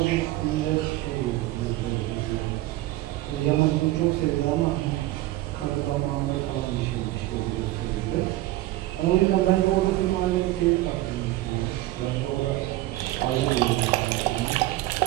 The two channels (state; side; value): quieter; left; 17.0 dB